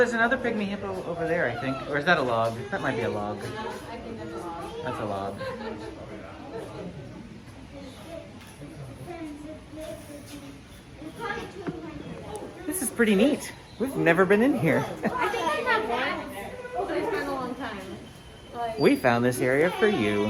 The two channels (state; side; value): identical; both; correlation 1.00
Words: another pygmy hippo over there, I think. Or is that a log? That might be a log. I think that's a log. That's a log. This is pretty neat. We've never been in here. I think I have one, but it's been a long time. Like, We found this area for